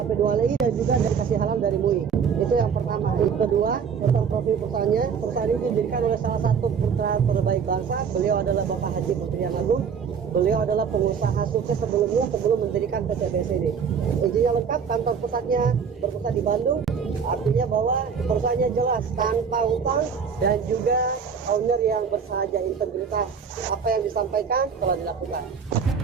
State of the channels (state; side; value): quieter; left; 6.5 dB